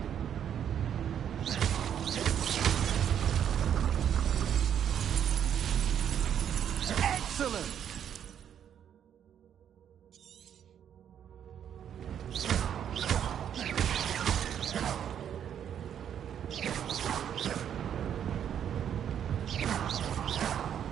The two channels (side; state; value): left; quieter; 9.2 dB